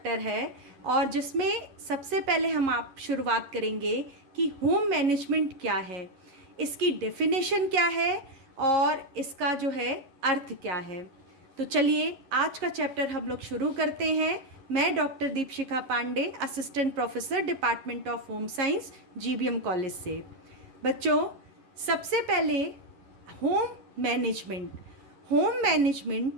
है और जिसमें सबसे पहले हम आप शुरुआत करेंगे कि होम मैनेजमेंट क्या है, इसकी डेफिनेशन क्या है और इसका जो है अर्थ क्या है। तो चलिए आज का चैप्टर हम लोग शुरू करते हैं। मैं doctor Deepshikha Pandey, assistant professor, department of home science, GBM college से। बच्चों, सबसे पहले होम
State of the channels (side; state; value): left; late; 11 ms